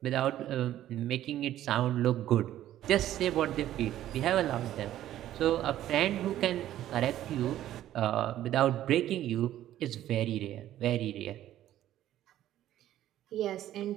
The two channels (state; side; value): quieter; left; 12.8 dB